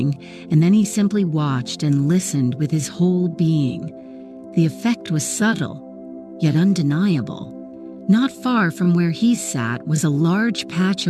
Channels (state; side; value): identical; both; correlation 1.00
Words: and then he simply watched and listened with his whole being. The effect was subtle, yet undeniable. Not far from where he sat was a large patch